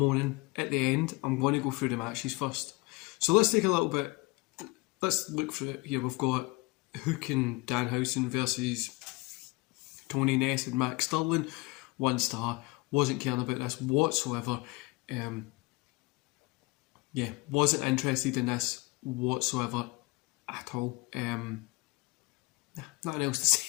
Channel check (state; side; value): quieter; right; 24.7 dB